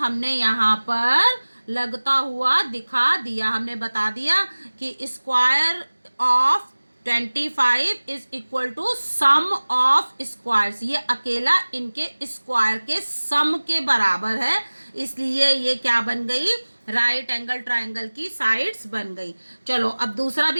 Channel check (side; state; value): both; inverted; correlation -1.00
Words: यहाँ पर लगता हुआ दिखा दिया। हमने बता दिया कि square of 25 is equal to sum of squares. ये अकेला इनके स्क्वायर के सम के बराबर है, इसलिए ये क्या बन गई, राइट एंगल ट्राइंगल की साइड्स बन गई। चलो अब दूसरा